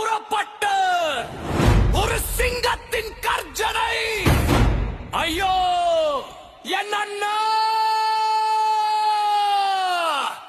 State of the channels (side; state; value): both; identical; correlation 1.00